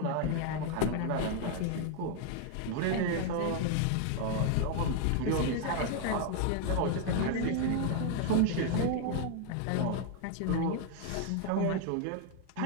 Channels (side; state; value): both; different; correlation 0.00